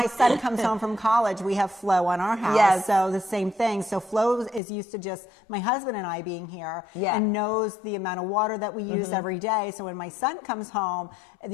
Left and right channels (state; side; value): drops out; right; at 4.6 s